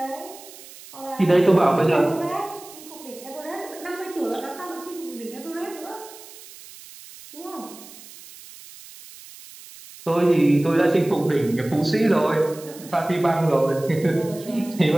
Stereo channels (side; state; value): right; noise; hiss, 18 dB below the sound